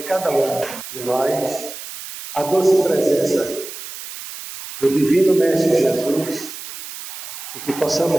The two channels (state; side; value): noise; right; hiss, 11 dB below the sound